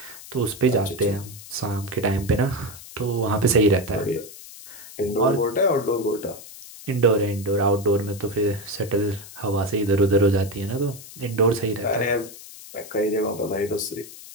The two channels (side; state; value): left; noise; hiss, 16 dB below the sound